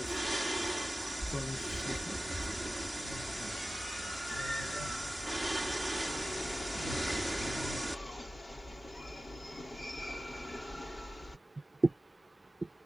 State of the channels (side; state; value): both; normal; correlation 0.95